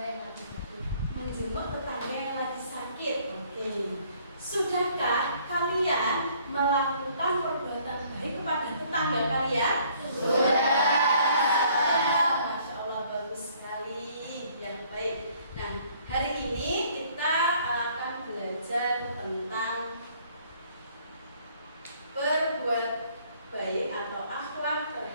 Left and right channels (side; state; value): both; inverted; correlation -0.61